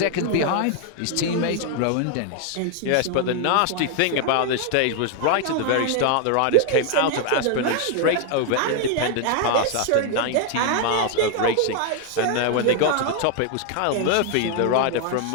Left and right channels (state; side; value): different; both; correlation 0.01